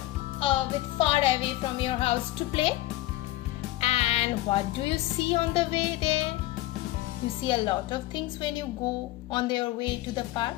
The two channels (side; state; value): right; quieter; 16.6 dB